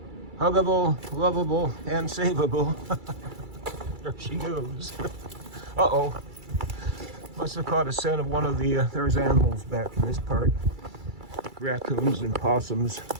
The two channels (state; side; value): late; left; 2.3 ms